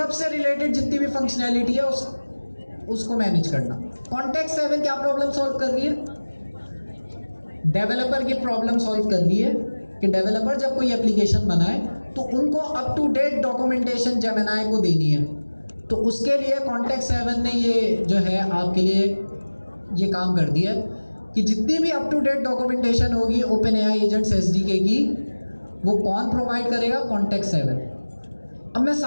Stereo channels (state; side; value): inverted; both; correlation -1.00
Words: से रिलेटेड जितनी भी फंक्शनैलिटी है उसको मैनेज करना। कॉन्टेक्स्ट 7 क्या प्रॉब्लम सॉल्व कर रही है? डेवलपर की प्रॉब्लम सॉल्व कर रही है कि डेवलपर जब कोई एप्लीकेशन बनाए तो उनको up to date documentation Gemini को देनी है। तो उसके लिए कॉन्टेक्स्ट 7 ने ये जो है आपके लिए ये काम कर दिया कि जितनी भी अप टू डेट डॉक्यूमेंटेशन होगी OpenAI एजेंट्स SDK की, वो कौन प्रोवाइड करेगा? कॉन्टेक्स्ट 7। अब मैं